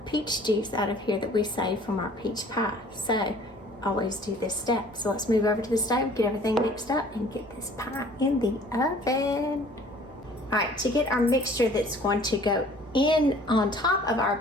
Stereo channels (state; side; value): normal; both; correlation 0.52